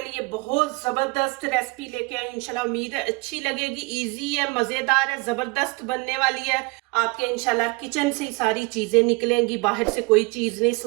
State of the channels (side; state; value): left; quieter; 26.8 dB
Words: लिए बहुत ज़बरदस्त रेसिपी लेके आई। इंशाल्लाह उम्मीद है अच्छी लगेगी। इजी है, मज़ेदार है, ज़बरदस्त बनने वाली है। आपके इंशाल्लाह किचन से ही सारी चीज़ें निकलेंगी, बाहर से कोई चीज़ नहीं